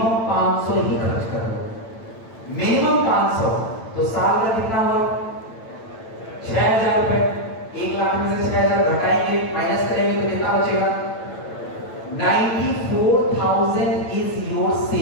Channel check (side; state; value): right; late; 9.0 ms